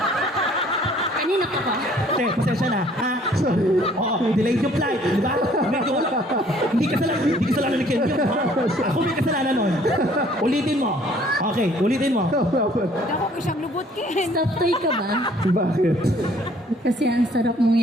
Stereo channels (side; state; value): both; normal; correlation 0.58